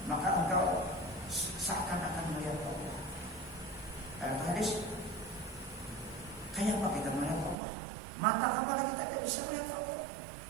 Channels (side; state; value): left; drops out; at 7.6 s